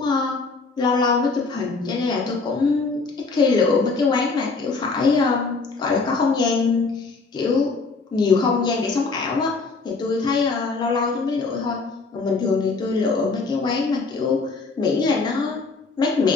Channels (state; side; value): quieter; right; 4.1 dB